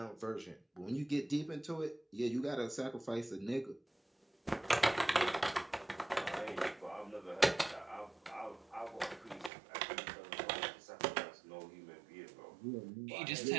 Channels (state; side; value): drops out; left; at 9.5 s